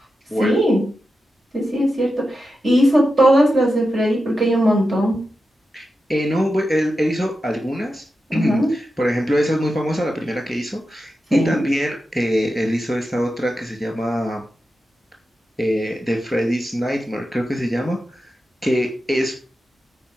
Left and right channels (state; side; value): normal; both; correlation 0.90